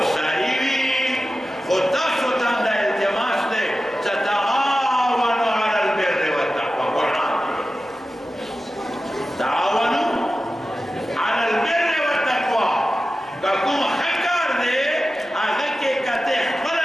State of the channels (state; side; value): normal; both; correlation 0.94